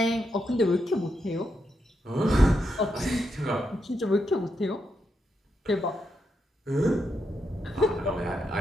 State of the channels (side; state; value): both; normal; correlation 0.83